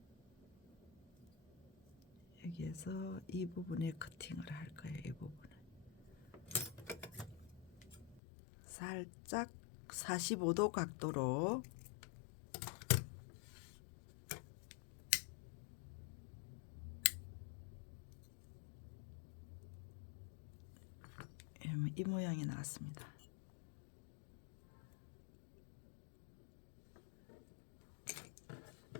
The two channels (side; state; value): right; drops out; at 8.2 s